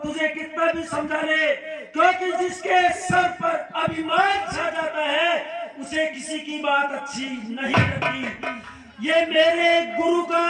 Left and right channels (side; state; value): both; identical; correlation 1.00